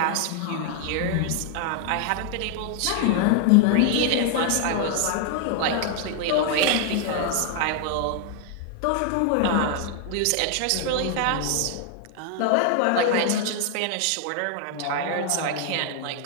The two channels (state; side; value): different; both; correlation 0.00